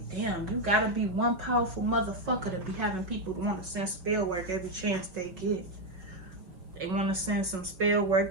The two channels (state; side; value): late; left; 5.5 ms